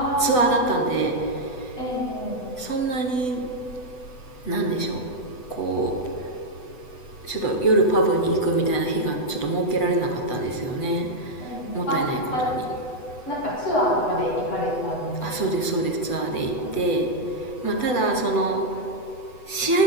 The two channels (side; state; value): right; late; 8.0 ms